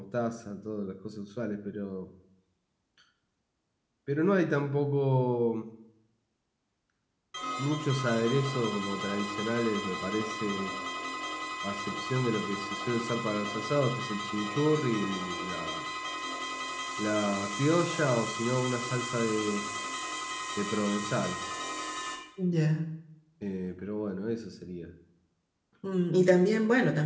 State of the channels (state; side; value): identical; both; correlation 1.00